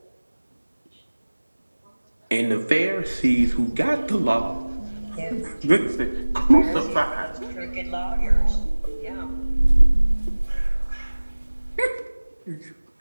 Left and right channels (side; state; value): both; inverted; correlation -1.00